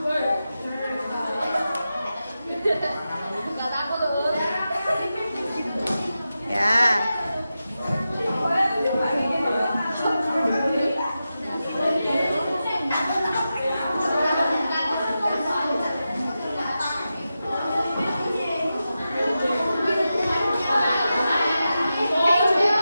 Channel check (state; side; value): inverted; both; correlation -0.91